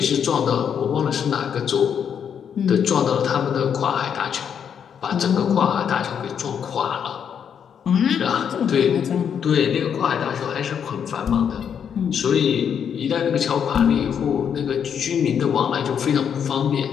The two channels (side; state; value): right; quieter; 7.9 dB